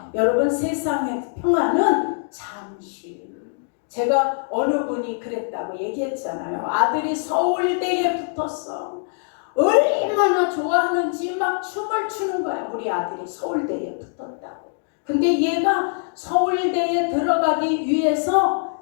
여러분, 세상의 평안은 잠시. 제가 어느 분이 그랬다고 얘기했잖아요. 아들이 서울대에 붙었어. 얼마나 좋아하는지 막 춤을 추는 거야. 우리 아들이 서울대에 붙었다고. 근데 얘가 서울대에 들어가기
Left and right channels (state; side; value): silent; right; digital silence